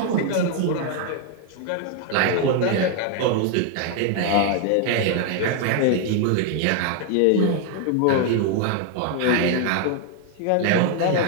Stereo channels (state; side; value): different; both; correlation 0.00